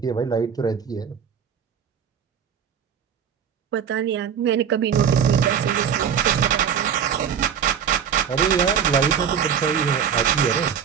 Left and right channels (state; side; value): quieter; left; 7.9 dB